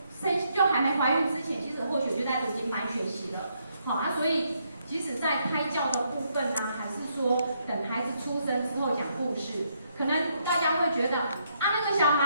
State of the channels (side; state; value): both; inverted; correlation -0.75